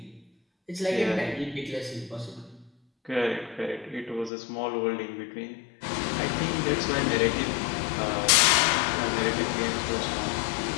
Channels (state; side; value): drops out; right; at 4.3 s